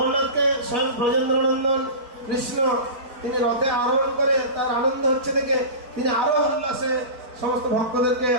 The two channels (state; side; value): late; left; 4.5 ms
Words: স্বয়ং ব্রজেন্দ্রনন্দন কৃষ্ণ তিনি রথে আরোহণ করে তার আনন্দ হচ্ছে দেখে তিনি আরো উল্লাসে সমস্ত ভক্তদেরকে